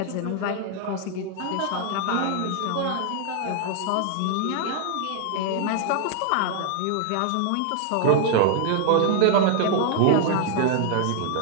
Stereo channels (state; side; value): different; both; correlation 0.00